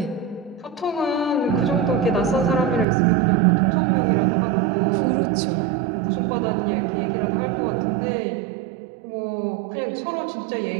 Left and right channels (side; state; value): left; drops out; at 2.9 s